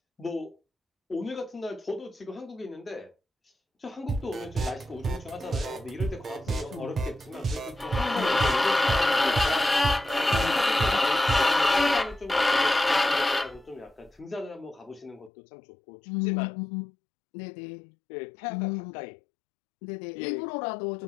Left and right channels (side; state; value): right; drops out; at 15.3 s